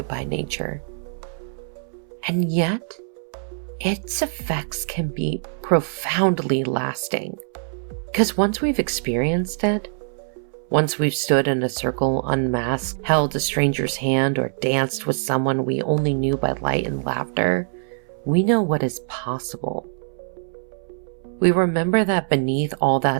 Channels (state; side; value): silent; left; 63 dB below the other